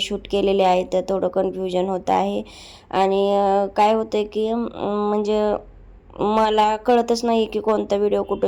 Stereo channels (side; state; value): both; identical; correlation 1.00